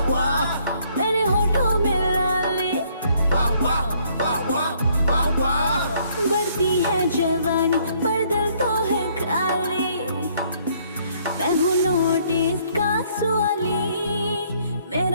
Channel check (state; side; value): inverted; both; correlation -0.65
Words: मेरे होठों में लाली बढ़ती है जवानी पर दिल तो है खाली। मैं हूँ नोटिस का सवाली,